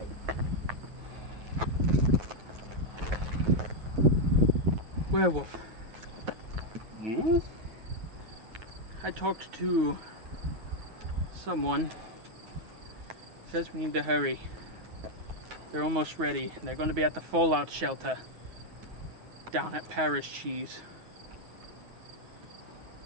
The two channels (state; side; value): late; left; 9.3 ms